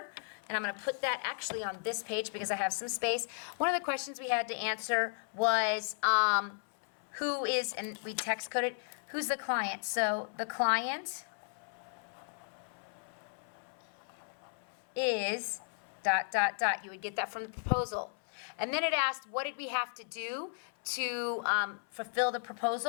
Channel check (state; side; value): silent; right; 54 dB below the other